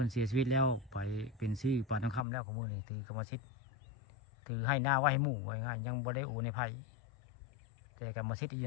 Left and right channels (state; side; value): drops out; right; at 2.2 s